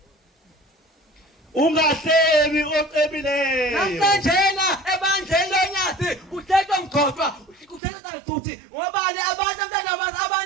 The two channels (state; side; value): drops out; left; at 7.8 s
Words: Ungahlebi ocebileyo. Namhlanje ebandleni lonyasi kuthethwa mgqoqwa kuthethwa futhi ngobani abantu